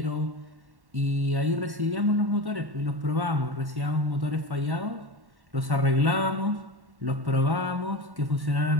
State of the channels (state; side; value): late; left; 1.1 ms